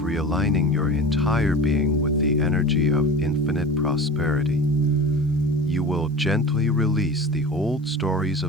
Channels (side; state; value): both; normal; correlation 0.34